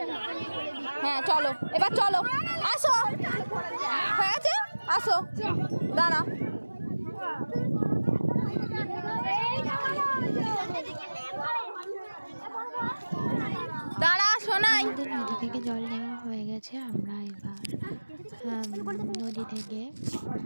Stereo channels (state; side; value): inverted; both; correlation -1.00